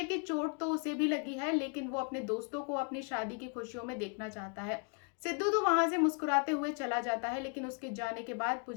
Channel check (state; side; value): quieter; right; 39.7 dB